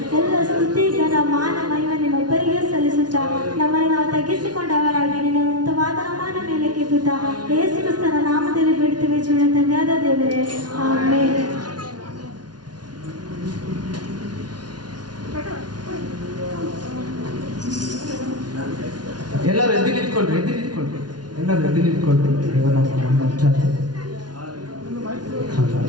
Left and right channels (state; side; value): late; left; 0.69 ms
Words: ಎಲ್ಲ ಸ್ತುತಿ, ಘನ, ಮಾನ, ಮಹಿಮೆ ನಿಮ್ಮೊಬ್ಬರಿಗೆ ಸಲ್ಲಿಸುತ್ತಾ ನಮ್ಮನ್ನು ನಾವು ತಗ್ಗಿಸಿಕೊಂಡವರಾಗಿ ನಿನ್ನ ಉನ್ನತವಾದ ನಾಮದ ಮೇಲೆ ಕೆತ್ತುತ್ತಾ ಯೇಸು ಕ್ರಿಸ್ತನ ನಾಮದಲ್ಲಿ ಬಿಡ್ತೇವೆ. ಜೀವನ ತಂದೆಯಾದ ದೇವರೇ, ಆಮೆನ್. ಎಲ್ಲರೂ ಎದ್ದು ನಿಂತ್ಕೊಳ್ರಿ, ಎಲ್ಲರೂ ಎದ್ದು ನಿಂತ್ಕೊಳ್ರಿ.